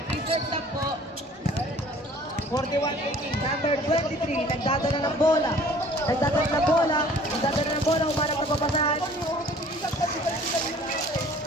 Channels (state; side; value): normal; both; correlation 0.52